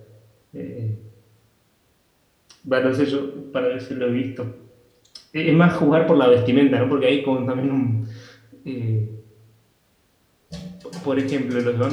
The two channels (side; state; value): both; identical; correlation 1.00